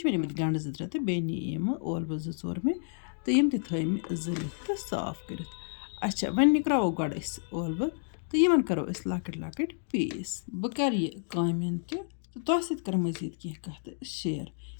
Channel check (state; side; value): silent; right; digital silence